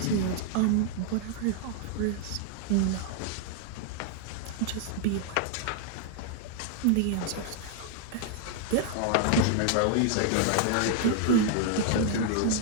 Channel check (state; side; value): different; both; correlation 0.00